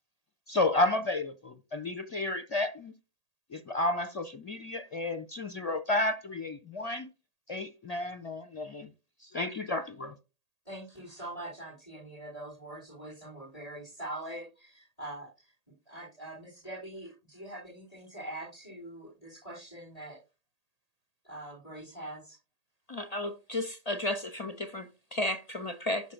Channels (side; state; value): right; late; 1.8 ms